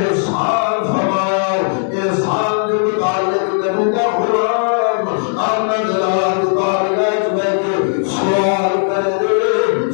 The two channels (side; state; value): right; silent; digital silence